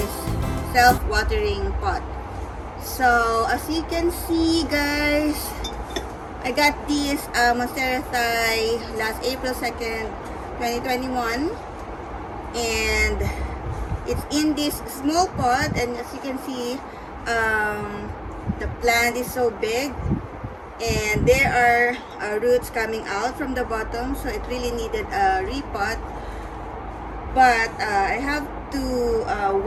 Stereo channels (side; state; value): both; identical; correlation 1.00